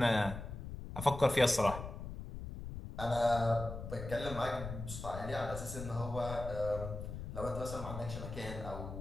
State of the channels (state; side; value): noise; left; rumble, 8 dB below the sound